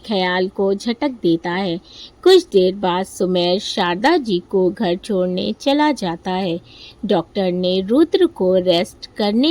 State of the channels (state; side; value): identical; both; correlation 1.00